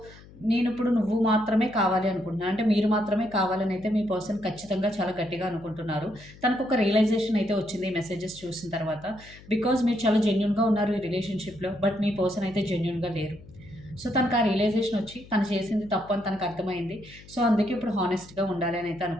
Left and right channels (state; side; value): noise; left; hum, 21 dB below the sound